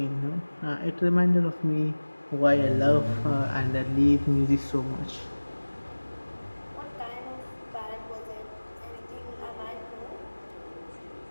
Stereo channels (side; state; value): both; inverted; correlation -1.00